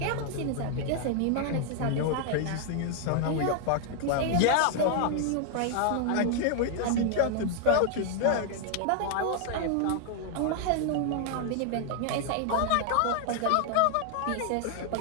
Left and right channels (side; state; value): both; different; correlation 0.00